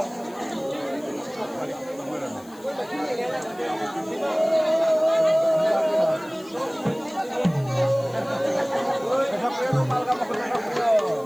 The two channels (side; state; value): left; noise; hiss, 24 dB below the sound